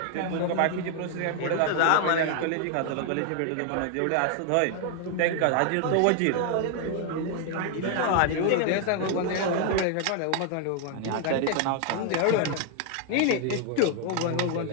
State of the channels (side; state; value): both; different; correlation 0.00